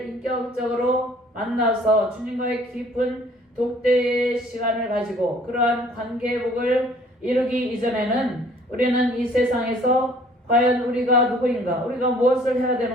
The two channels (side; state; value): both; normal; correlation 0.56